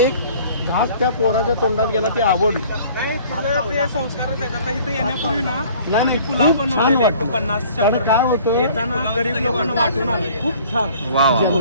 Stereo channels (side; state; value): both; inverted; correlation -0.52